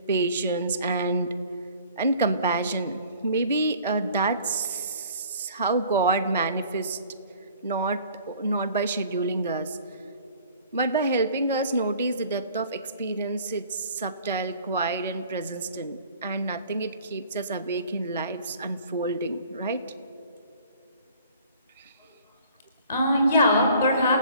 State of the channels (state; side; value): inverted; both; correlation -0.51